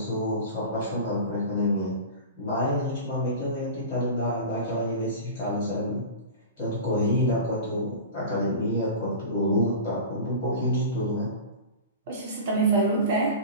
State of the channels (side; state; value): both; inverted; correlation -0.31